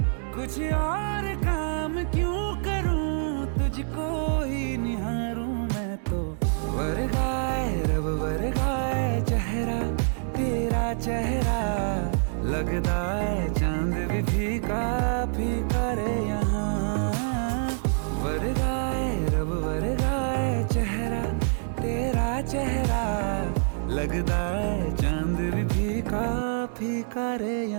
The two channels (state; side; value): silent; left; 61 dB below the other